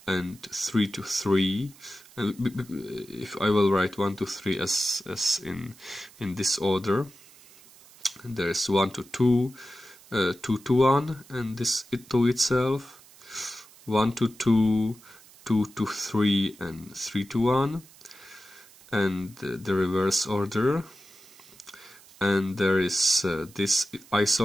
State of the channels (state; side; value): noise; right; hiss, 24 dB below the sound